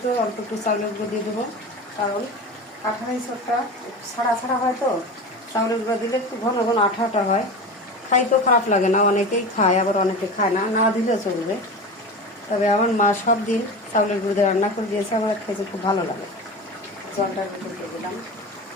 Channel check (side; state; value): both; normal; correlation 0.29